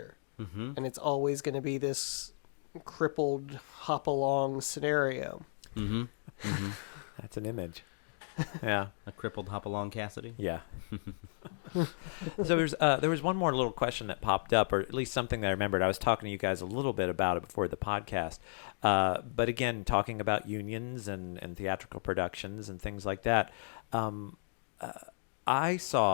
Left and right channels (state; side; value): silent; right; digital silence